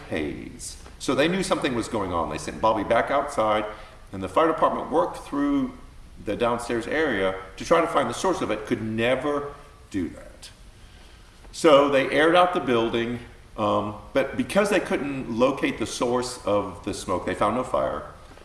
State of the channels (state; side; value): identical; both; correlation 1.00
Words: haze. So they knew something was going on. They sent Bobby back outside, and the fire department worked through the downstairs area to try to find the source of it, could never do that. So they aired out the building, but because they couldn't locate the source of the smoke, they found no fire.